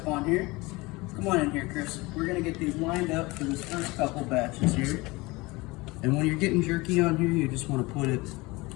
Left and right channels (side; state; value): right; quieter; 22.9 dB